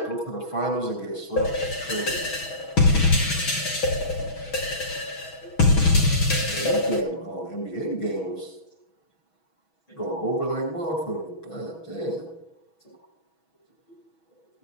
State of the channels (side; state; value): right; late; 6.2 ms